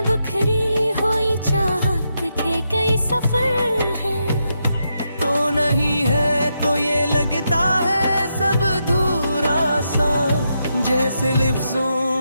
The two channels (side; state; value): both; inverted; correlation -0.83